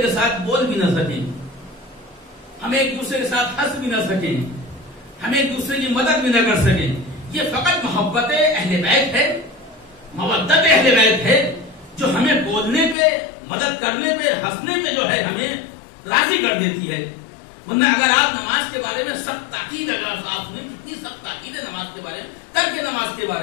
کے ساتھ بول بھی نہ سکیں, ہم ایک دوسرے کے ساتھ ہنس بھی نہ سکیں, ہم ایک دوسرے کی مدد بھی نہ کر سکیں. یہ فقط محبت اہل بیت ہے, مودت اہل بیت ہے, جو ہمیں بولنے پہ, مدد کرنے پہ, ہنسنے پہ جو ہے ہمیں راضی کر دیتی ہے. ورنہ اگر آپ نماز کے بارے میں سخت تاکید، اگر آپ نے کتنی سخت تاکید ہے نماز کے بارے میں، ترک نماز کے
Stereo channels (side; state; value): right; drops out; at 13.0 s